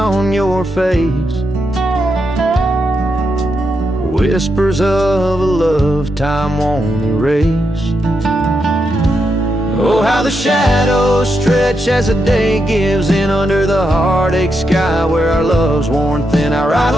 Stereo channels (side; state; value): both; normal; correlation 0.83